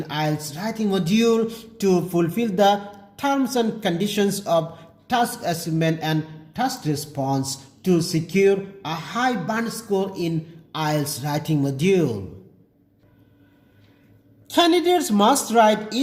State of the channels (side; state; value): both; identical; correlation 1.00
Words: Ielts writing module to fulfill the terms and conditions of task achievement and task response to secure a high band score in Ielts writing module. Candidates must write